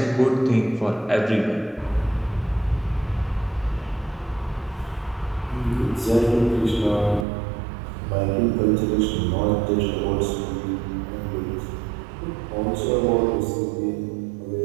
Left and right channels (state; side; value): drops out; left; at 7.2 s